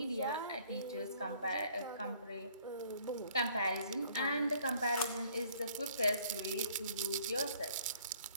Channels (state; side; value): inverted; both; correlation -0.59